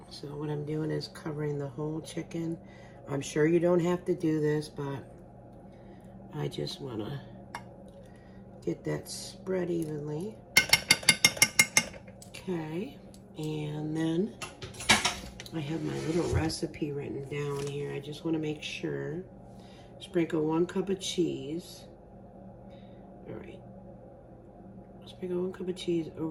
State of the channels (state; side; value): identical; both; correlation 1.00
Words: So what I'm doing is covering the whole chicken. I'm sure you don't have to do this, but I just want to get that spread evenly. Okay, and then I have my little recipe written down here. I just want to make sure. Sprinkle 1 cup of cheese. All right. Sprinkle 1 cup of cheese